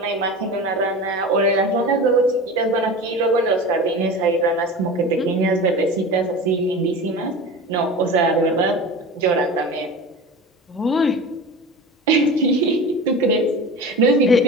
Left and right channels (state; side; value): normal; both; correlation 0.33